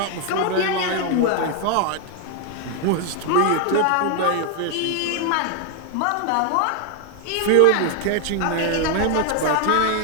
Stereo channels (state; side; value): different; both; correlation 0.00